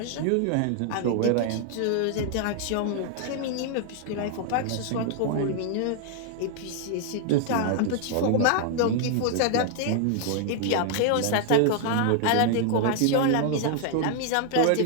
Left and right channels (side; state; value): both; different; correlation 0.00